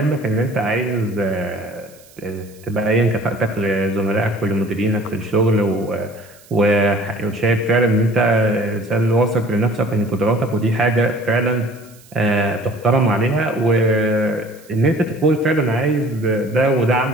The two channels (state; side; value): noise; right; hiss, 26 dB below the sound